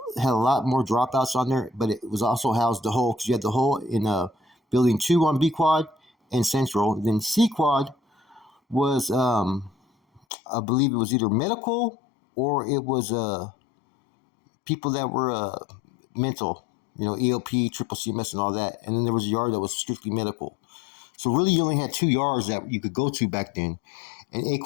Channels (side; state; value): right; drops out; at 10.2 s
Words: had a lot more dropouts on there, but it was also housed the hole, because you had the hole in building 2 on B Quad and Central. Then C Quad was, I believe it was either medical or it was people that were mental, EOP, triple CMS, and all that. And then there was a yard that was strictly medical. So really, you only had 2 yards that you could go to back then, and A